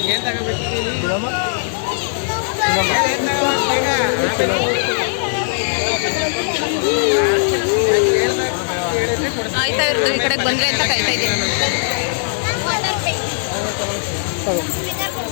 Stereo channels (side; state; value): right; silent; digital silence